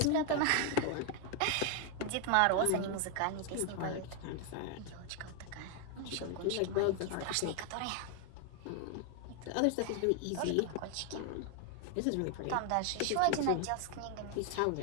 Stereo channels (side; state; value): both; different; correlation 0.00